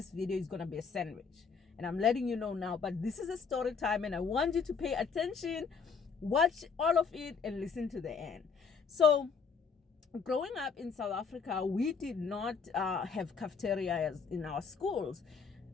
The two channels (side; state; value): right; quieter; 5.7 dB